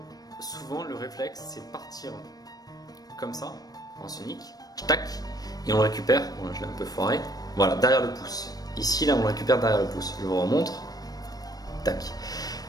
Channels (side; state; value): right; late; 0.19 ms